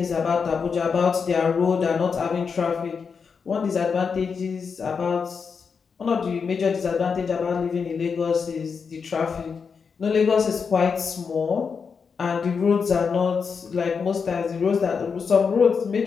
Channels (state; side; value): quieter; right; 5.8 dB